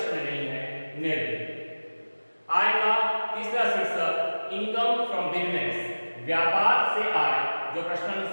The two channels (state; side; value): inverted; both; correlation -1.00